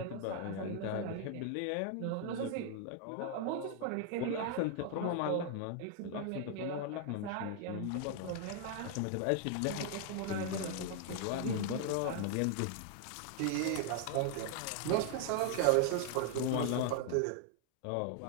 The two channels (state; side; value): different; both; correlation 0.00